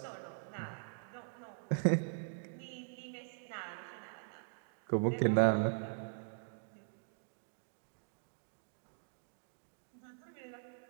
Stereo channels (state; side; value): silent; left; digital silence